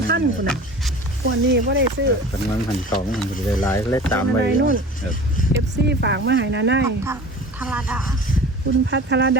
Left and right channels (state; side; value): normal; both; correlation 0.40